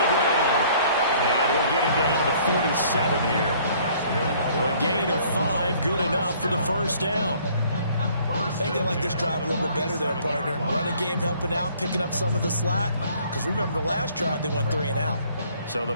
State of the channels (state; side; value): inverted; both; correlation -0.58